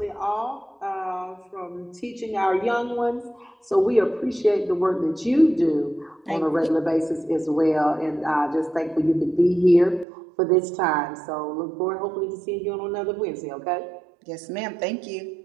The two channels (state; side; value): drops out; left; at 10.1 s